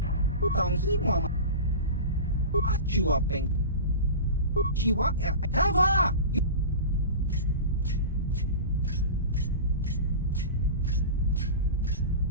Tong hitwa ma. Achua peng. Chiwa tava.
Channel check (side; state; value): both; inverted; correlation -0.30